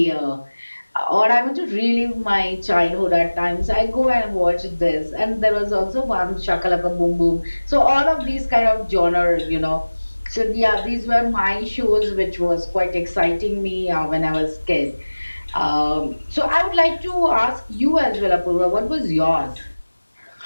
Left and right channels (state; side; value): inverted; both; correlation -1.00